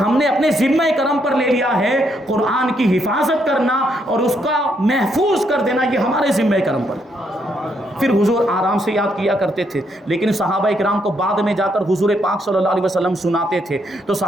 ہم نے اپنے ذمہ کرم پر لے لیا ہے قرآن کی حفاظت کرنا اور اس کا محفوظ کر دینا، یہ ہمارے ذمہ کرم پر۔ پھر حضور آرام سے یاد کیا کرتے تھے، لیکن صحابہ کرام کو بعد میں جا کر حضور پاک صلی اللہ علیہ وسلم سناتے تھے، تو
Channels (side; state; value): both; normal; correlation 0.75